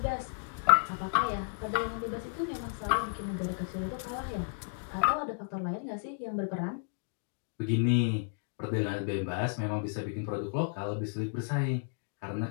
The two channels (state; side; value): silent; right; digital silence